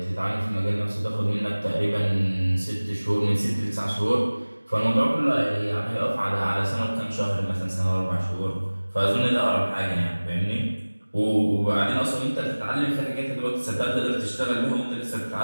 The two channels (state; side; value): inverted; both; correlation -1.00